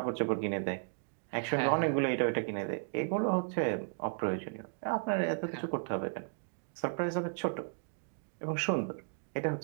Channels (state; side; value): silent; left; digital silence